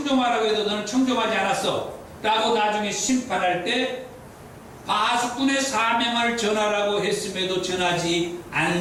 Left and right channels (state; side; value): identical; both; correlation 1.00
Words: 해도 너는 청종하지 않았어? 라고 나중에 심판할 때 파수꾼의 사명을 전하라고 했음에도 전하지